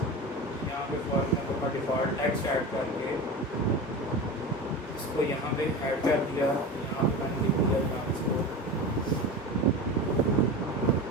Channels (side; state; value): both; normal; correlation 0.28